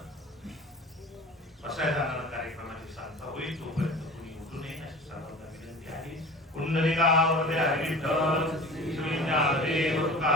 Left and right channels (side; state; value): both; normal; correlation 0.38